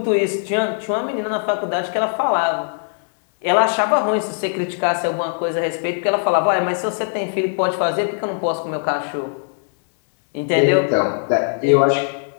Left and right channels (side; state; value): right; silent; digital silence